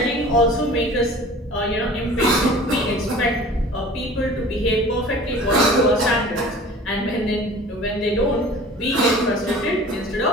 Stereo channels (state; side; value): normal; both; correlation 0.44